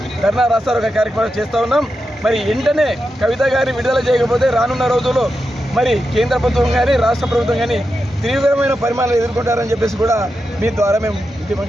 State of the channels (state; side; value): normal; both; correlation 0.88